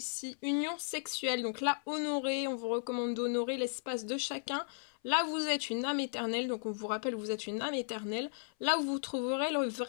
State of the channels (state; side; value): silent; right; 54 dB below the other